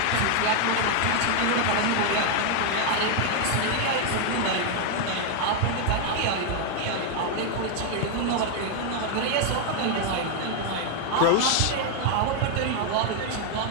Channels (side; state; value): both; different; correlation 0.00